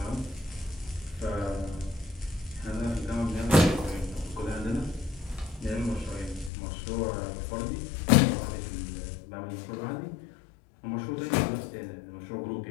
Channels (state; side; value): drops out; right; at 6.5 s